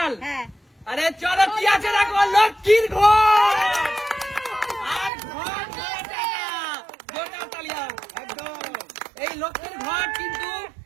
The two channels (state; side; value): drops out; left; at 5.1 s